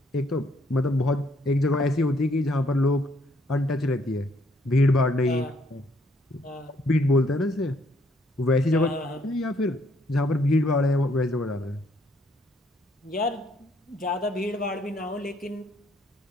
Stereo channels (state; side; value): normal; both; correlation 0.68